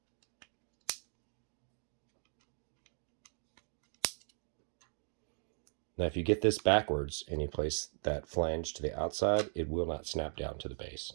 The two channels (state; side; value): silent; left; 52 dB below the other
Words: Now, if you get this backwards and you place that flange to the outside, it will not snap down to the base.